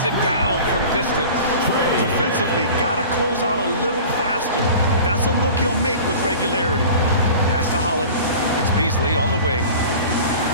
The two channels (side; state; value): both; inverted; correlation -0.40